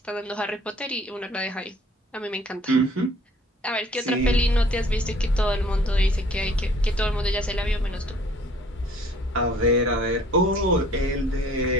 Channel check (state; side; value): normal; both; correlation 0.55